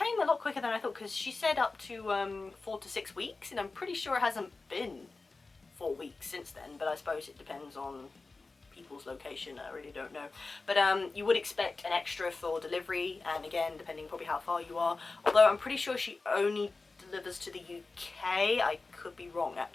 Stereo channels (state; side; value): quieter; right; 3.7 dB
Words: a lot quicker than I thought, because she said up to 4 to 6 weeks, and I'm pretty sure it hasn't been 4 weeks since then, but I suppose it depends on people's location, I really don't know. But you would expect an extra for delivery, and again, depending probably how far you are, although I'm pretty sure she only delivers to the UK. I could be wrong